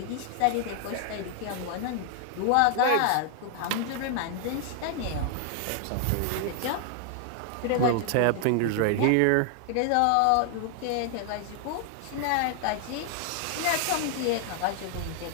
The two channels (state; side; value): different; both; correlation 0.00